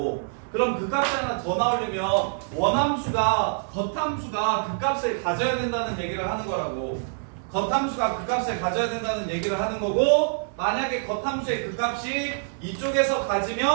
그럼 극값이 하나 더 나오려면 원함수가 겉함수가 극값을 가져야 된다는 얘기를 하는 거라고. 겉함수가 극값을 가져야 된다는 얘기를 하는 거고, 만약에 겉함수의 극값이 이쪽에서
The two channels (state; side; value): silent; left; 61 dB below the other